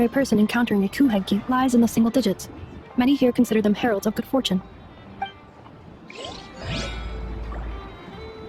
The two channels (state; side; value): identical; both; correlation 1.00